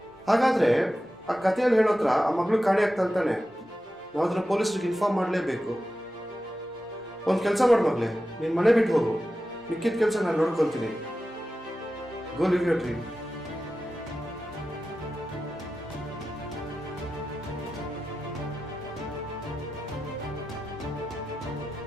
ಹಾಗಾದರೆ ಆ ಕಥೆಯಲ್ಲಿ ಹೇಳೋತ್ರ ಆ ಮಗಳು ಕಾಣೆ ಆಗ್ತಾನೆ. ನಾವು ಅದನ್ನ ಪೊಲೀಸ್ರಿಗೆ ಇನ್ಫಾರ್ಮ್ ಮಾಡಲೇಬೇಕು. ಒಂದು ಕೆಲಸ ಮಾಡು ಮಗಳೇ, ನೀನು ಮನೆ ಬಿಟ್ಟು ಹೋಗು, ಮಿಕ್ಕಿದ ಕೆಲಸ ನಾನು ನೋಡ್ಕೊತೀನಿ. Go live your dream.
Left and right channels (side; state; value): both; normal; correlation 0.93